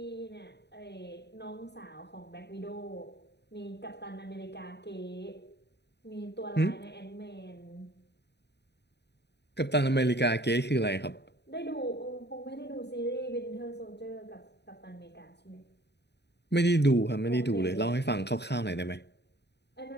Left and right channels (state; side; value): late; right; 0.50 ms